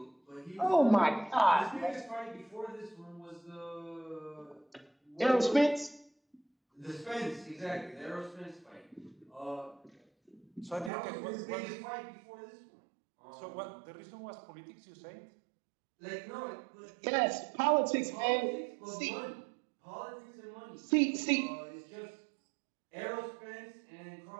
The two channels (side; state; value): left; drops out; at 10.9 s